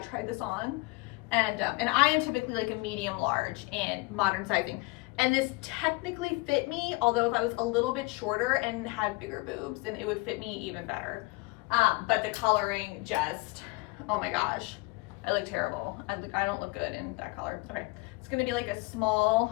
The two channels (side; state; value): right; quieter; 25.3 dB